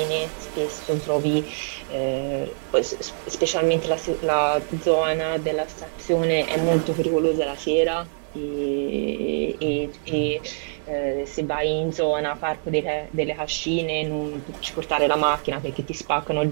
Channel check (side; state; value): left; silent; digital silence